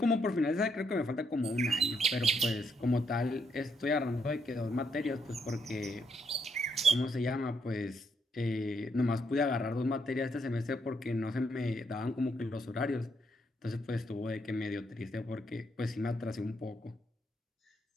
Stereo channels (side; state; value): both; normal; correlation 0.76